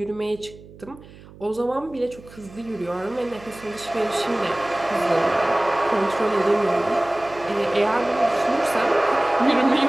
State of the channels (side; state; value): right; noise; hum, 20 dB below the sound